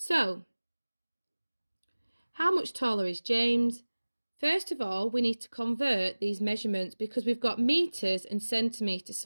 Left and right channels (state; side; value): inverted; both; correlation -1.00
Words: how much taller is James? First of all, we need to convert these measurements because we've got meters and centimeters.